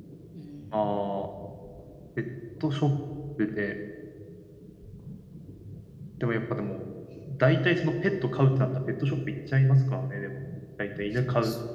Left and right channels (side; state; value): both; identical; correlation 1.00